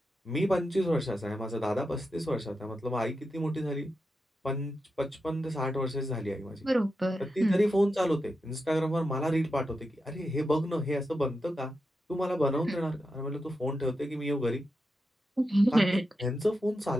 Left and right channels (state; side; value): normal; both; correlation 0.88